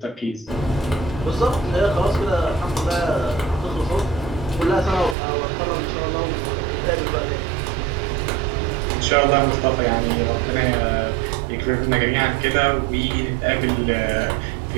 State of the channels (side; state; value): left; drops out; at 5.2 s